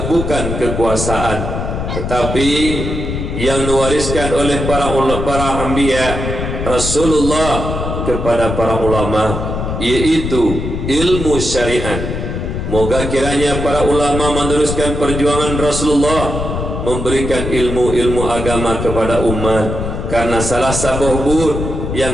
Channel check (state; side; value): noise; left; rumble, 4 dB below the sound